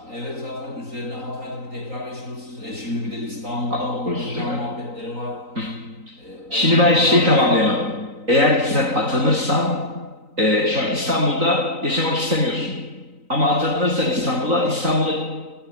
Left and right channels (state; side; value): late; left; 3.9 ms